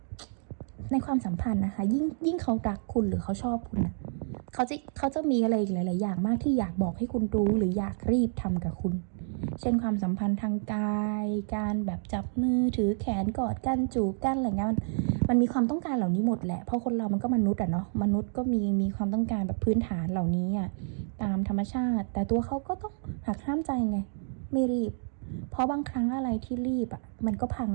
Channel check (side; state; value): left; silent; digital silence